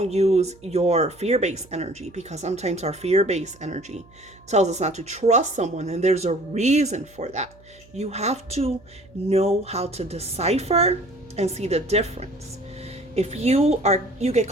use your fear-based energy, because sometimes our fear-based energy tells us not to trust someone, and there's a reason for that. You have to know how to decipher and see the difference. If you get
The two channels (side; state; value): right; noise; hum, 26 dB below the sound